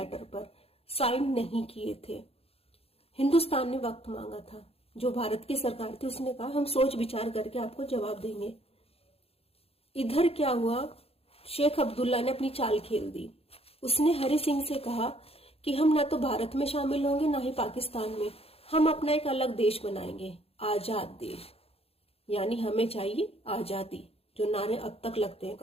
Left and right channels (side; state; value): right; late; 0.28 ms